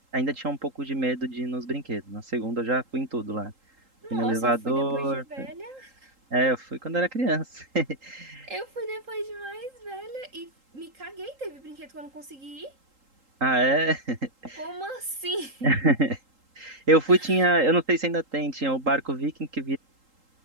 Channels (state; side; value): late; left; 3.8 ms